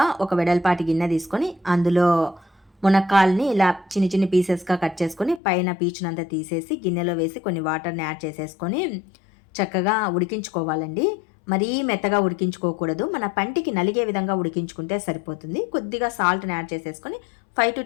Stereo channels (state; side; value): drops out; right; at 5.4 s